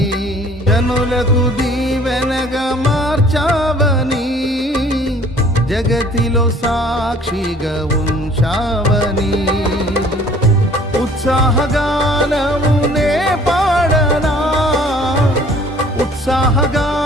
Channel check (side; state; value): both; normal; correlation 0.54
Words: జనులకు దీవెనగా మార్చావని, జగతిలో సాక్షిగా ఉంచావని, ఉత్సాహగానమునే పాడనా,